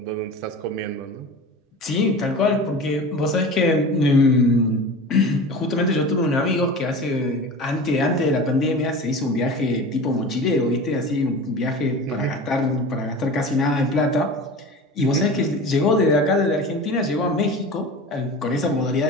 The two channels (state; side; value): normal; both; correlation 0.34